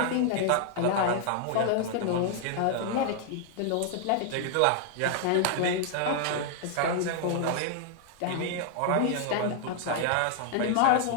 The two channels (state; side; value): different; both; correlation 0.00